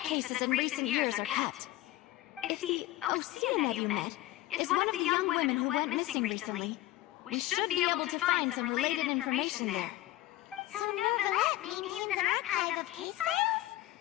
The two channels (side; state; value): right; quieter; 16.5 dB